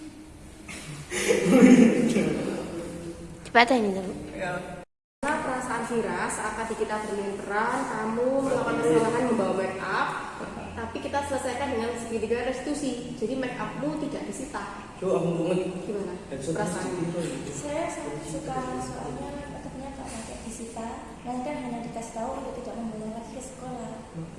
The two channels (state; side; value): identical; both; correlation 1.00